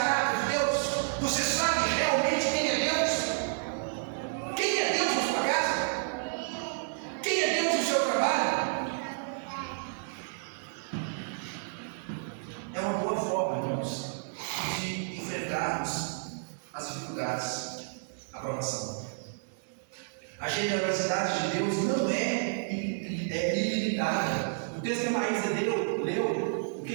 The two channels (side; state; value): left; silent; 57 dB below the other